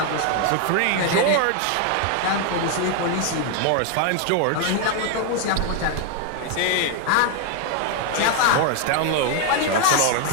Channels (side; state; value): both; different; correlation 0.01